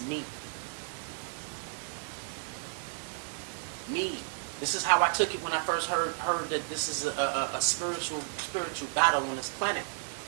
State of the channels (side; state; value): left; silent; 56 dB below the other